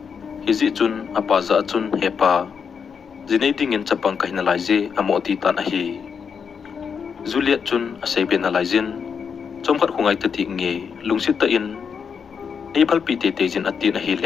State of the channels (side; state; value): right; quieter; 6.5 dB